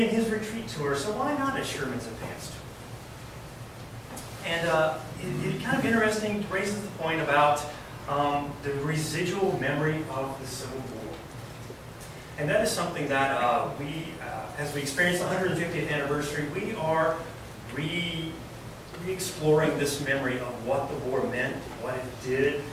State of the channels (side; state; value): both; identical; correlation 1.00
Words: and his retreat tour, so why not a Sherman's advance tour? And it's kind of interesting, raises the point about the residual memory of the Civil War. And that is something that as we experience the 150th anniversary, we are re-exploring this memory of what the war meant, what it did,